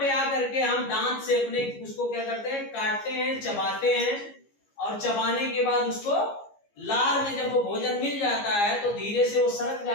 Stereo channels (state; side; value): late; right; 15 ms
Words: आकर के हम दांत से अपने उसको क्या करते हैं, काटते हैं, चबाते हैं और चबाने के बाद उसको लार में जब वो भोजन मिल जाता है तो धीरे से वो सरक